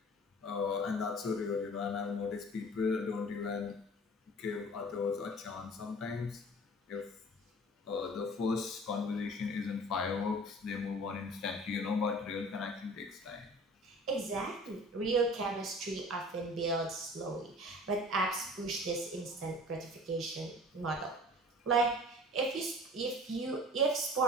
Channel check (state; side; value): normal; both; correlation 0.44